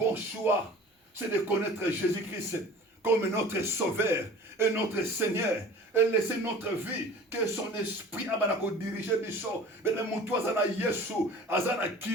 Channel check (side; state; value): both; normal; correlation 0.43